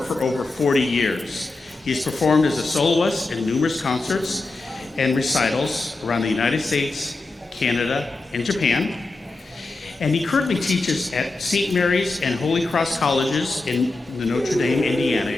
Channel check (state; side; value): quieter; right; 3.3 dB